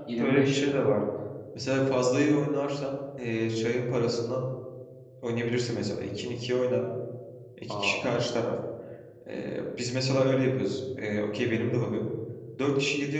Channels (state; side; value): identical; both; correlation 1.00